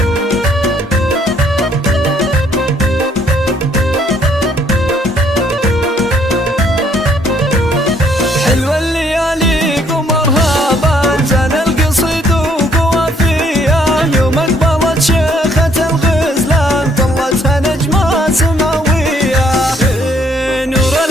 حلوة الليالي قمرها بان، زان القصيد وقوافيه، يوم اقبلت شيخة الغزلان طلتها نجمة سماوية. نور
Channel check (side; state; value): both; normal; correlation 0.66